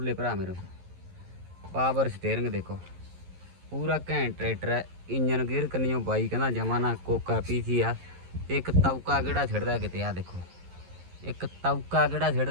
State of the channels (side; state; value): left; late; 11 ms